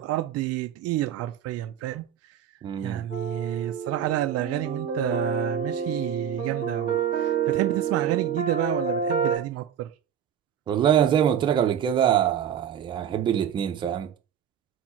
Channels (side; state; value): left; quieter; 9.1 dB